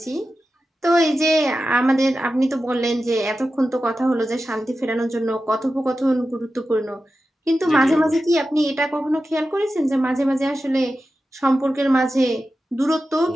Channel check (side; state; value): both; normal; correlation 0.92